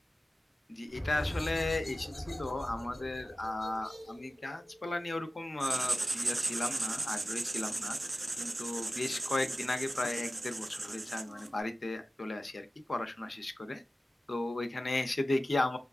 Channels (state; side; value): normal; both; correlation 0.96